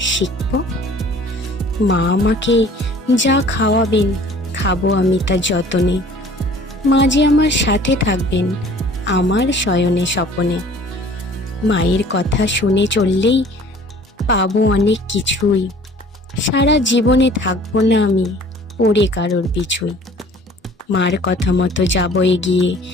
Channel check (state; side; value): normal; both; correlation 0.50